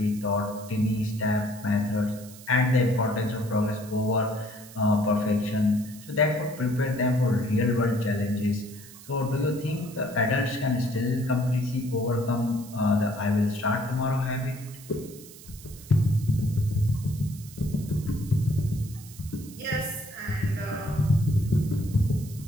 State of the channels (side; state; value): right; noise; hiss, 18 dB below the sound